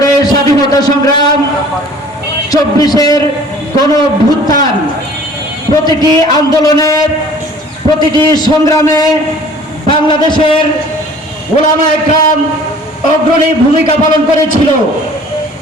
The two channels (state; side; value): normal; both; correlation 0.49